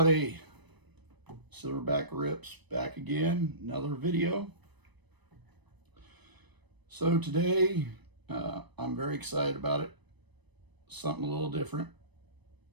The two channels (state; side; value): late; left; 1.0 ms